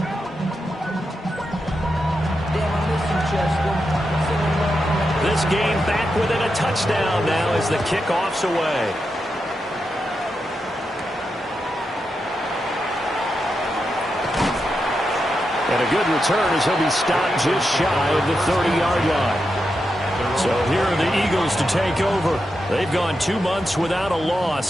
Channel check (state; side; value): normal; both; correlation 0.87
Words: This game back within a touchdown now as the kickoff's away. And a good return as he'll be stopped just shy of the 30-yard line. So here are the Eagles to take over. They've gone 2 months without a